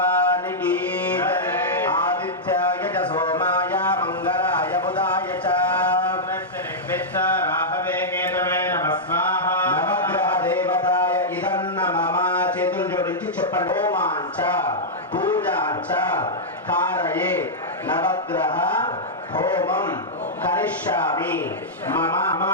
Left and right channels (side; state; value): both; normal; correlation -0.09